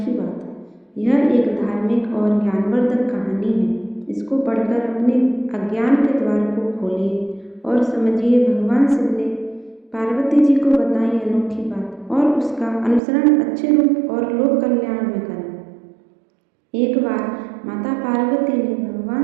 बात। यह एक धार्मिक और ज्ञानवर्धक कहानी है। इसको पढ़कर अपने अज्ञान के द्वार को खोलिए और समझिए भगवान शिव ने पार्वती जी को बताई अनोखी बात और उसका अनुसरण अच्छे रूप और लोक कल्याण में करें। एक बार माता पार्वती ने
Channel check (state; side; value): drops out; left; at 13.0 s